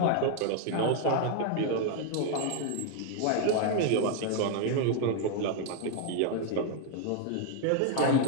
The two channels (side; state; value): both; different; correlation 0.01